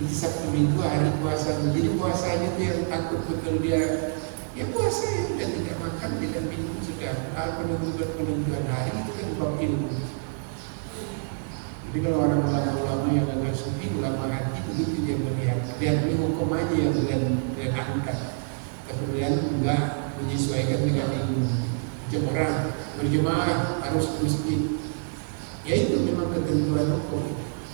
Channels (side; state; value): left; silent; 60 dB below the other